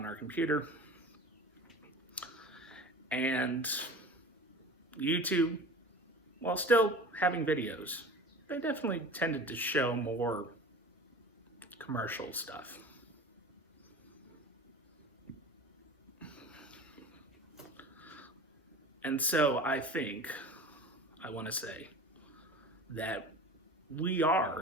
our computer. And YouTube, while still having videos, they definitely tended to show more commercial stuff. And so I want to say that we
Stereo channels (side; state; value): both; normal; correlation 0.37